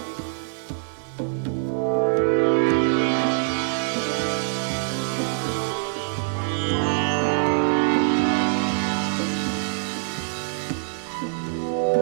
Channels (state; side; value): silent; left; 62 dB below the other